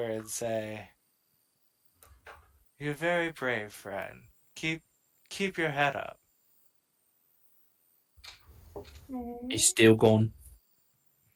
and say, "You're very brave, friend. Keep your head up." He's still gone.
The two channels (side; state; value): both; identical; correlation 1.00